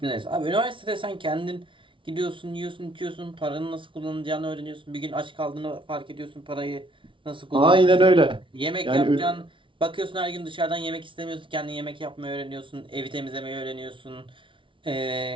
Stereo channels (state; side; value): late; left; 0.25 ms